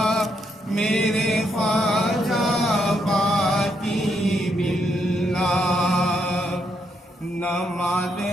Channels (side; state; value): both; normal; correlation 0.77